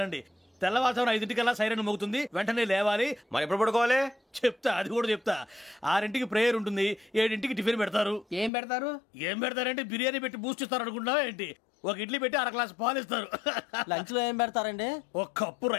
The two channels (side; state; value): right; drops out; at 8.5 s